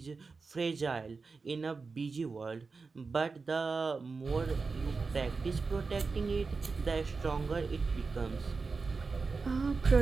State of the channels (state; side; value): quieter; left; 4.4 dB